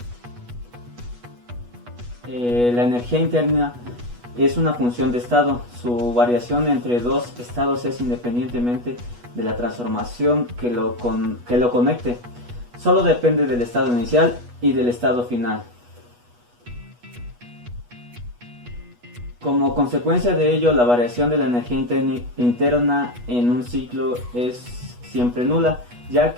La energía interna es una función de estado. Su variación entre dos estados es independientemente de la transformación que lo conecte. Solo depende del estado inicial y del estado final. Como consecuencia de ello, la variación de la energía interna en un ciclo es siempre nula, ya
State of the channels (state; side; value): late; left; 8.2 ms